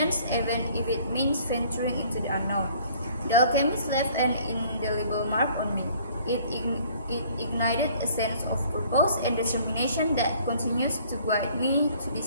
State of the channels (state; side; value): inverted; both; correlation -0.56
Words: even if it means venturing into the unknown. The Alchemist left an indelible mark on me. It ignited a sense of purpose and determination that continues to guide me to